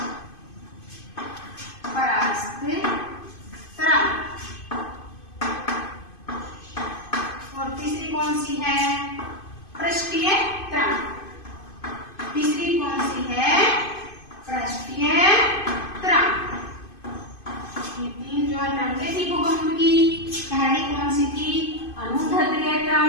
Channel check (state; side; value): late; right; 2.5 ms